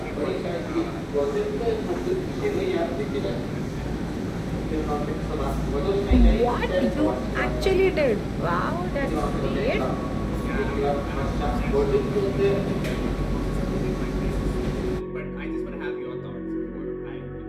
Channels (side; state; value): both; identical; correlation 1.00